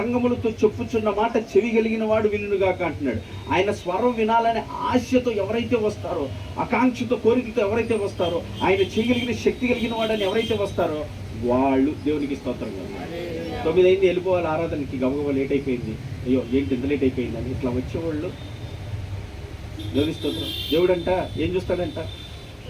చెప్పుచున్న మాట చెవి కలిగిన వాడు వినుగాక అంటున్నాడు. ఆయన స్వరం వినాలనే ఆశతో ఎవరైతే వస్తారో, ఆకాంక్షతో కోరికతో ఎవరైతే వస్తారో, ఆయన చేయగలిగిన శక్తి కలిగిన వాడని ఎవరైతే వస్తారో వాళ్ళు దేవునికి స్తోత్రం. 9 అయింది వెళ్ళిపోవాలి ఆరాధనకి, గబగబా లేట్ అయిపోయింది, అయ్యో ఏంటి ఇంత లేట్ అయిపోయింది అని ఇట్లా వచ్చేవాళ్ళు దేవుని స్తోత్రం. దేవుడంట ఏం చూస్తాడంట?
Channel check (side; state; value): both; identical; correlation 1.00